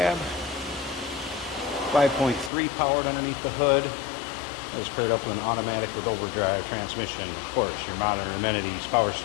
5.3 powered underneath the hood. That is paired up with an automatic with overdrive transmission. Of course, your modern amenities, power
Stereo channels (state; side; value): drops out; right; at 2.5 s